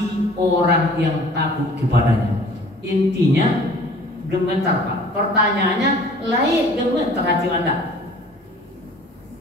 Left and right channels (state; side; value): normal; both; correlation 0.49